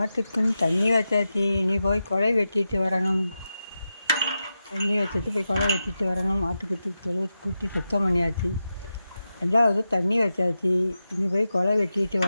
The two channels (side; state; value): both; inverted; correlation -0.90